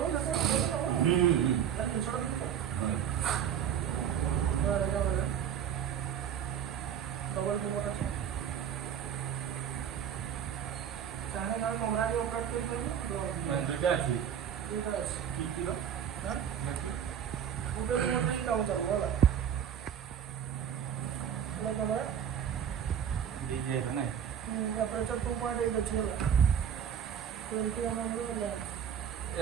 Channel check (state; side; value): quieter; left; 8.7 dB